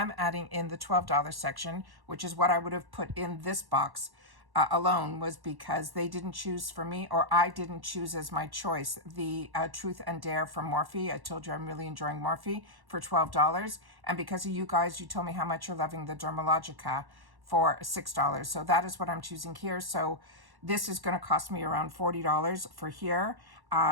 adding in the $12 section, which is what I would have put in this box alone, was because they didn't choose for me, or I didn't choose as my choice, the Truth and Dare from Morphe. I told you I'm really enjoying Morphe for $12. And because of you guys, you told me how much you're loving the Dermalogica for $6. So that is what I'm choosing here. So this is going to cost me around $40 for here.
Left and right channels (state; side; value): late; left; 1.1 ms